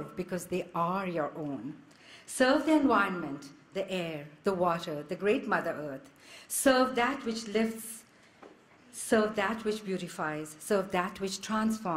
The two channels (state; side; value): identical; both; correlation 1.00